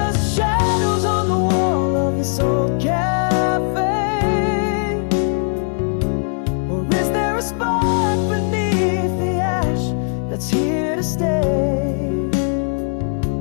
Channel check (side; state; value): right; silent; 66 dB below the other